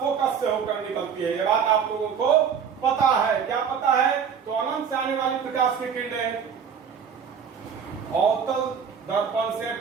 से होकर निकलती है। ये बात आप लोगों को पता है, क्या पता है, तो अनंत से आने वाली प्रकाश की किरणें अवतल दर्पण से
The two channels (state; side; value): quieter; left; 7.1 dB